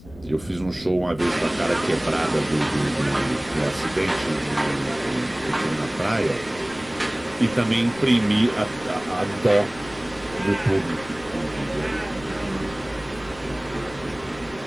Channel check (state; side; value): noise; left; rumble, 19 dB below the sound